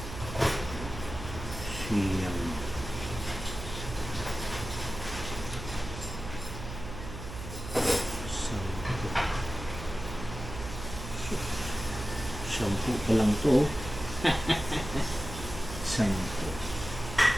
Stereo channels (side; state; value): right; noise; hum, 10 dB below the sound